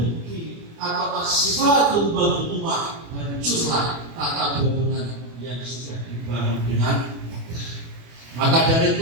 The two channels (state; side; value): late; left; 25 ms